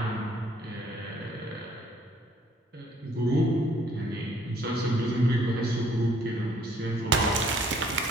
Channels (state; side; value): normal; both; correlation 0.61